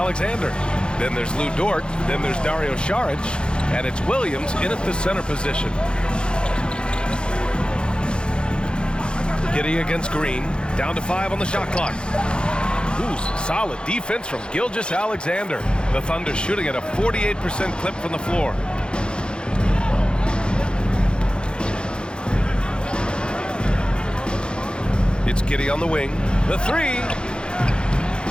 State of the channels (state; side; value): late; right; 0.052 ms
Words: Then there's Lou Dort, then there's Dario Saric, and it's Williams in at the center position. Giddey against Green, down to 5 on the shot clock. Ooh, solid defense from Gilgeous-Alexander. The Thunder shooting at a 48% clip from the floor. It's Giddey on the wing. The three.